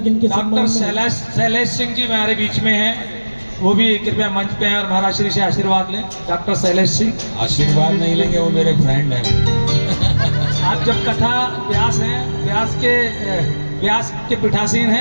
इनके डॉक्टर शैलेश सिंह जी हमारे बीच में हैं, वो भी कृपया मंच पे आए और महाराज श्री से आशीर्वाद लें। डॉक्टर शैलेश सिंह आशीर्वाद नहीं लेंगे, वो मेरे फ्रेंड हैं। आप जब कथा व्यास हैं, व्यास के पीठासीन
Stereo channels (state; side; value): inverted; both; correlation -1.00